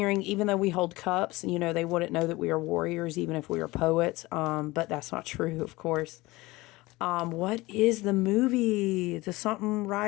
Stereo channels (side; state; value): right; quieter; 20.7 dB